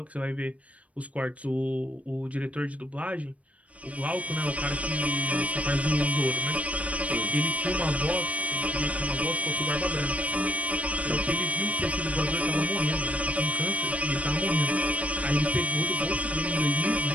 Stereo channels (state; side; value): late; left; 0.066 ms